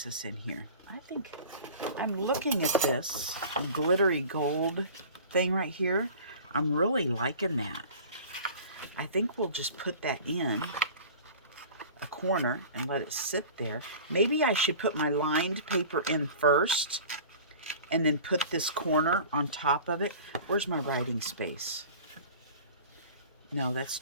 this in here? I think I'm looking at this glittery gold thing right here. I'm really liking that. I think we'll just put that in a corner and let it sit there. Maybe I should put my lined paper in first and then put this corner on top of it. Where's my writing space? No, that's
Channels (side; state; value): both; inverted; correlation -0.41